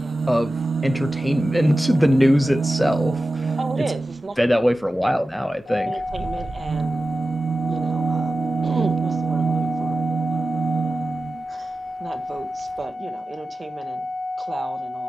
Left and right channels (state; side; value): normal; both; correlation 0.94